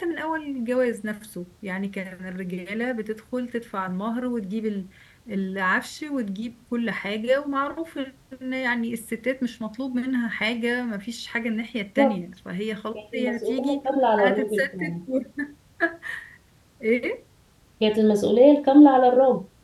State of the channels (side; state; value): both; identical; correlation 1.00